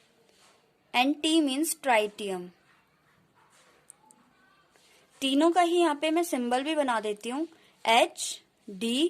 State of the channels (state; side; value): identical; both; correlation 1.00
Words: and T means tritium. तीनों का ही यहाँ पे मैं सिंबल भी बना देती हूँ H, D,